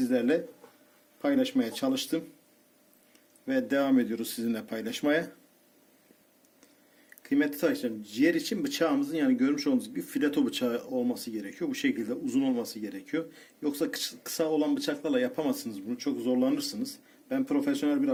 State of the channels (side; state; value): both; identical; correlation 1.00